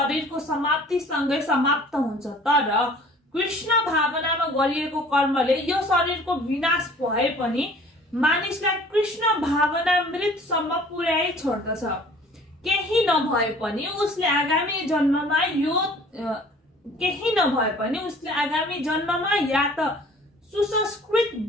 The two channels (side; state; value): both; normal; correlation 0.50